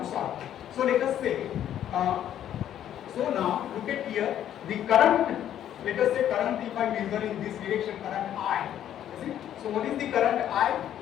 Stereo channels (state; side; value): quieter; right; 10.8 dB